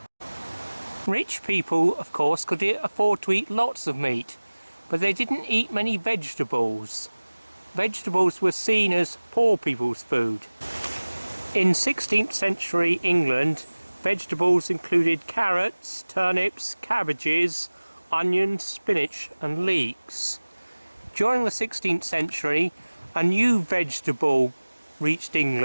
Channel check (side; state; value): both; inverted; correlation -1.00